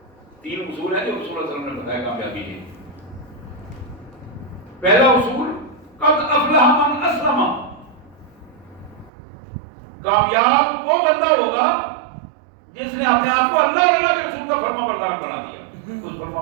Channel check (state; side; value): drops out; left; at 9.1 s